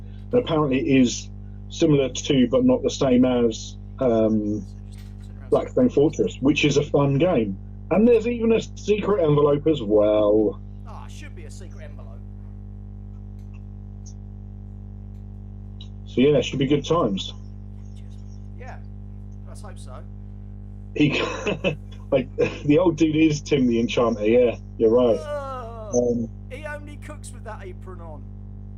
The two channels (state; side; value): identical; both; correlation 1.00